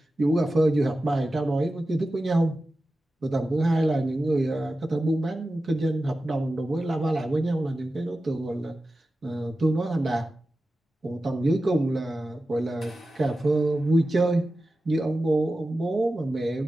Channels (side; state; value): both; normal; correlation 0.94